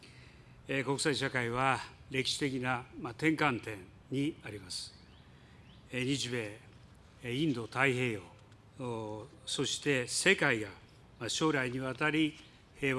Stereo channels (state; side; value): identical; both; correlation 1.00